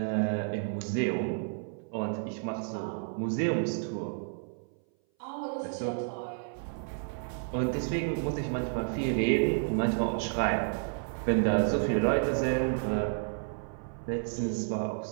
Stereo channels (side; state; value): left; silent; 57 dB below the other